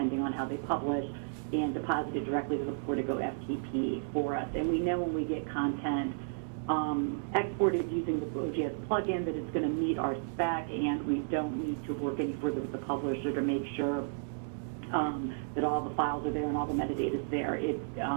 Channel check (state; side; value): silent; left; digital silence